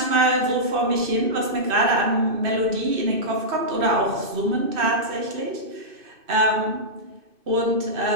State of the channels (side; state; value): left; late; 2.6 ms